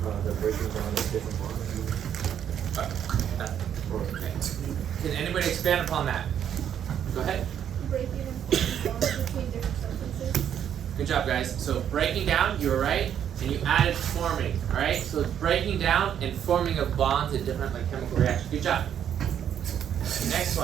The breaking down of different molecules. Okay. Can anybody expand upon that? Go ahead. Breaking and forming bonds between different substances. Good job, guys. So breaking down, you were right, and you added forming. All right. So it's breaking down and forming of bonds in different chemical reactions. Good job. Next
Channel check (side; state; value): left; quieter; 9.3 dB